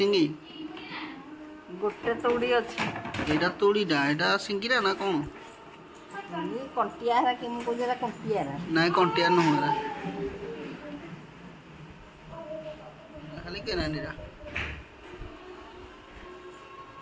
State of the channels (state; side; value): identical; both; correlation 1.00